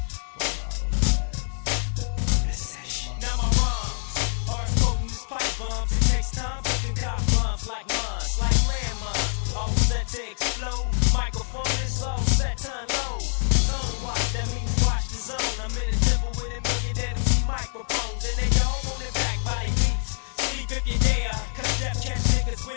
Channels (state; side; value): silent; right; digital silence